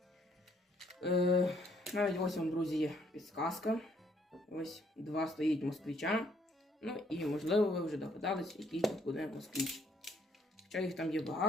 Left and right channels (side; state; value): both; normal; correlation 0.67